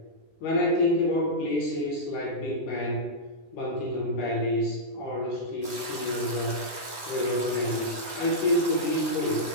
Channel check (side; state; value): right; late; 10 ms